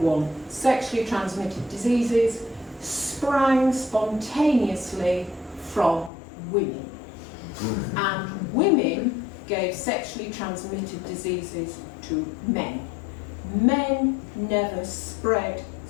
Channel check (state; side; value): drops out; right; at 6.1 s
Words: transmitted diseases sprang spontaneously from women. And women gave sexually transmitted diseases to men. Men never spread